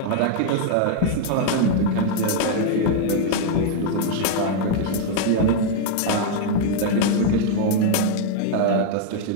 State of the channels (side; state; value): both; different; correlation 0.00